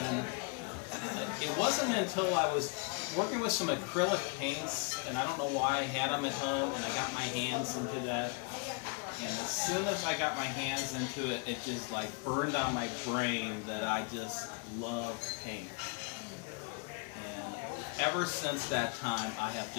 it wasn't until I was working with some acrylic paints, and I don't know why I had them at home, and I got my hands into that. And as soon as I got my hands into it, it just like burned on my brain that I just love paint. And ever since that time, I have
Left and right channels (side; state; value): right; quieter; 33.9 dB